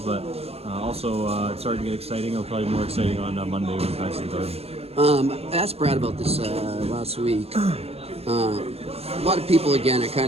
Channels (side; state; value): left; late; 0.29 ms